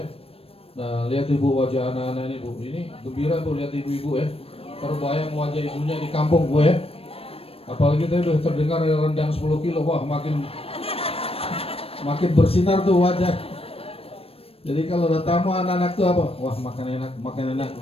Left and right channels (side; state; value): right; late; 0.28 ms